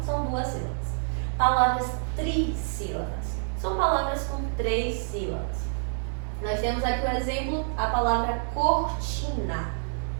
são 2 sílabas. Palavras trissílabas. São palavras com 3 sílabas. Nós temos aqui o exemplo, a palavra cortina.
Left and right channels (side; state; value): left; silent; 60 dB below the other